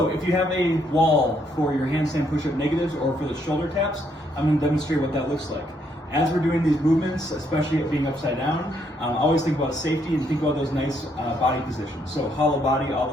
if you have a wall for your handstand push-up negatives or for the shoulder taps, I'm going to demonstrate what that looks like. As we're doing these movements, especially being upside down, always think about safety and think about those nice body positions. So hollow body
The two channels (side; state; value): both; normal; correlation 0.72